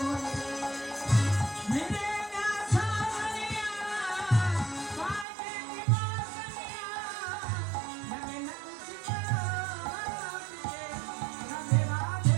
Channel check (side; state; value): left; drops out; at 5.2 s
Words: রে। मेरे ना सावरिया बाजे की बासनिया लगे न कुछ बोले राधे